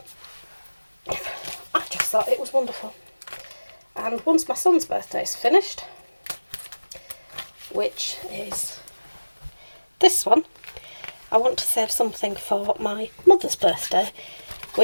I just thought it was wonderful. And once my son's birthday is finished, which is this one, I want to save something for my mother's birthday,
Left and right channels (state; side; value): inverted; both; correlation -1.00